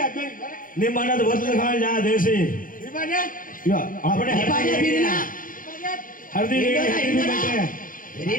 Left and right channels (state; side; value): late; right; 0.40 ms